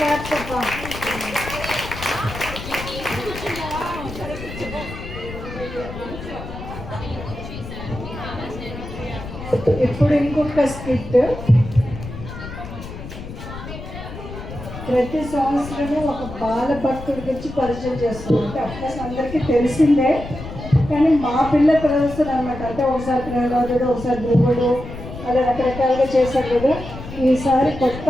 చెప్పా. ఇప్పుడు ఇంకొక స్కిట్. ప్రతి సంవత్సరము ఒక బాల భక్తుడి గురించి పరిచయం చేస్తున్నాం. అంటే అఫ్కోర్స్ అందరికీ తెలిసిందే, కానీ మా పిల్ల ప్రదర్శన అనమాట. అంటే ఒకసారి ప్రహ్లాదుడు, ఒకసారి ధ్రువుడు, అలా రకరకాలుగా చేశారు కదా. ఈసారి కొత్త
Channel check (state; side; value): noise; left; rumble, 11 dB below the sound